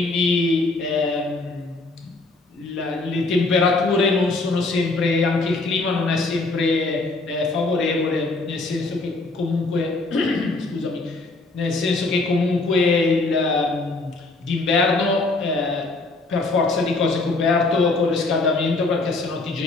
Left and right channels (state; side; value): quieter; right; 3.3 dB